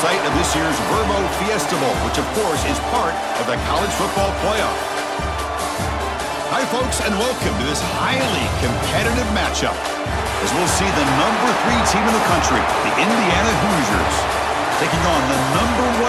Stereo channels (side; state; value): both; identical; correlation 1.00